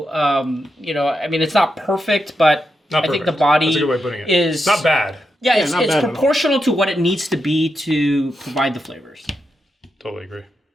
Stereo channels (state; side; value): normal; both; correlation 0.86